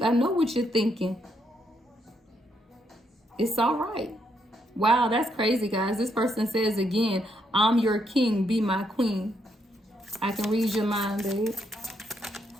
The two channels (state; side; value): normal; both; correlation 0.76